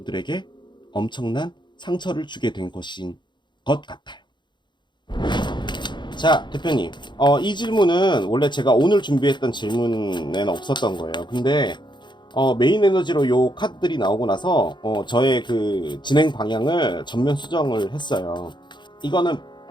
엄청난 상처를 주게 된 것인 것 같아요. 자, 대표님, 이 질문은 원래 제가 오늘 준비했던 질문에는 없었던 거예요. 근데 메인 에너지로 요 카드들이 나오고 나서 저의 그 진행 방향을 전면 수정을 했어요. 이거는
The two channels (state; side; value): late; right; 0.22 ms